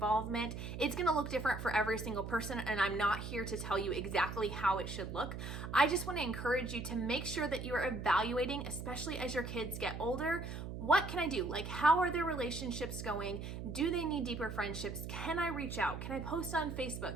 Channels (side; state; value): right; noise; hum, 7 dB below the sound